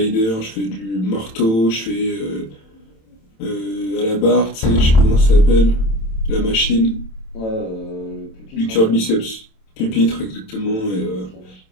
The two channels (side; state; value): right; late; 27 ms